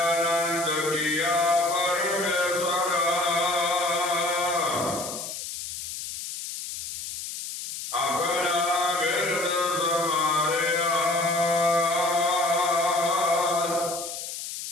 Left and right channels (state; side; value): noise; left; hiss, 8 dB below the sound